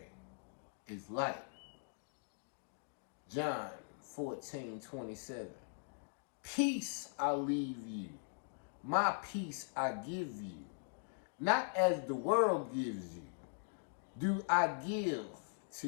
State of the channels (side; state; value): right; silent; digital silence